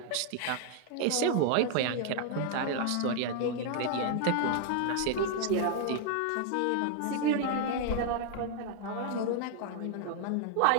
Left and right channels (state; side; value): different; both; correlation 0.00